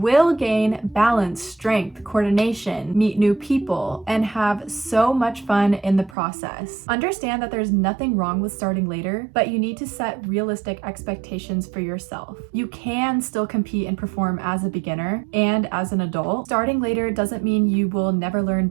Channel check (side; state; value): left; drops out; at 6.2 s